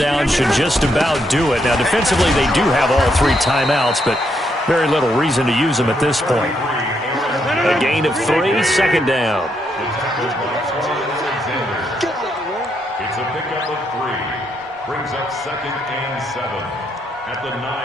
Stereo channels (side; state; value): both; normal; correlation 0.77